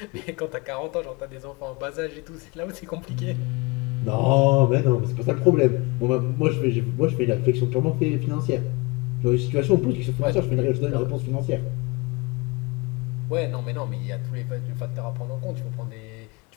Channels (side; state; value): right; quieter; 26.4 dB